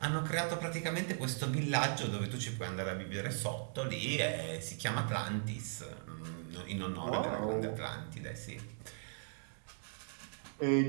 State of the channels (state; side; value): silent; left; digital silence